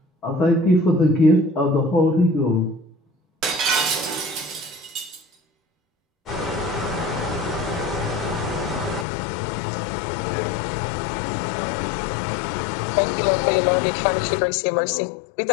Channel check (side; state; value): right; drops out; at 9.1 s